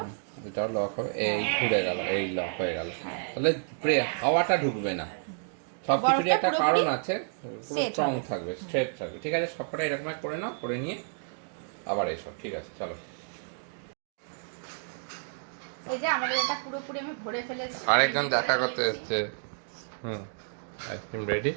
এটাও লক হবে। এই ঘুরে গেল, এই লক হয়ে গেল। তাহলে হাওয়াটা ঢুকবে না। সবকিছুরই একটা কারণ আছে, পুরো স্ট্রং থাকবে, স্ট্রেট থাকবে। ঠিক আছে, সবকটা এরকম করে নাও, করে নিয়ে আবার এসো। ঠিক আছে, চলো। এই যে আমাদের এটা পুরোপুরি আমি ভরে ফেলেছি। আরেকজন দেখা করতে এসেছে। Ice cream ready.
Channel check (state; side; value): silent; left; digital silence